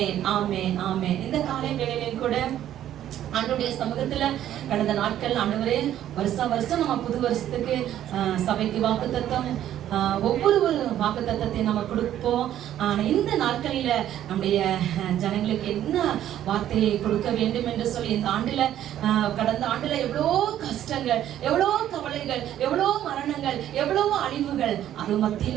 ஆமென் ஆமென். இந்த காலை வேளையிலும் கூட ஆண்டவருடைய சமூகத்துல கடந்த நாட்கள் ஆண்டவரே வருஷம் நம்ம புது வருஷத்துக்கு சபைக்கு வாக்குத்தத்தம் ஒவ்வொரு வாக்குத்தத்தத்தை நம்ம கொடுப்போம். இந்த நாட்களில நம்முடைய ஜனங்களுக்கு என்ன வார்த்தையை கொடுக்க வேண்டும் என்று சொல்லி இந்த ஆண்டுல கடந்த ஆண்டுல எவ்வளோ கஷ்டங்கள், எவ்வளோ கவலைகள், எவ்வளோ மரணங்கள், எவ்வளோ அழிவுகள், அது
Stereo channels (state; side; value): quieter; left; 11.7 dB